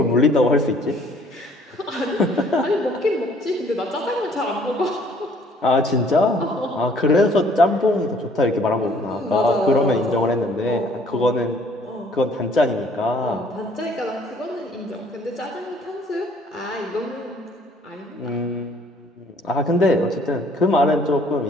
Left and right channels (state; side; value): normal; both; correlation 0.59